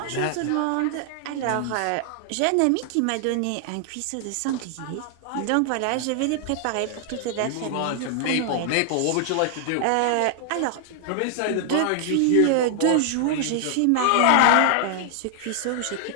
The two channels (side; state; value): both; different; correlation 0.00